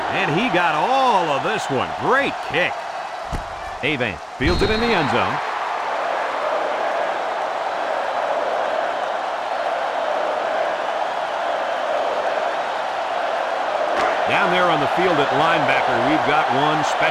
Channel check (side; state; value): both; identical; correlation 1.00